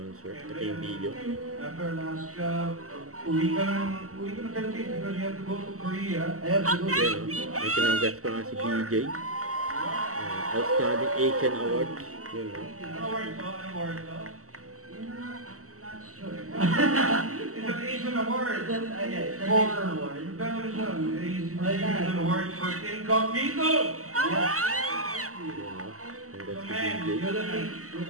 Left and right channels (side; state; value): left; late; 0.64 ms